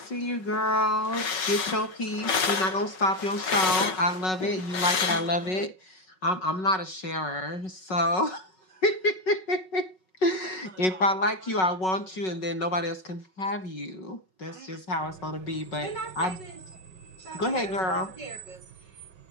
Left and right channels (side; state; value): right; late; 5.4 ms